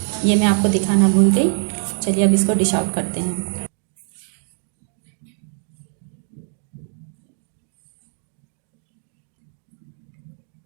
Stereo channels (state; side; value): silent; left; digital silence